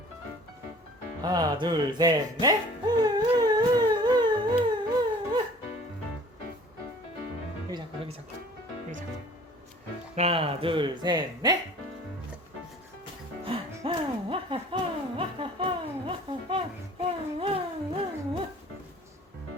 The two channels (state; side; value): normal; both; correlation 0.49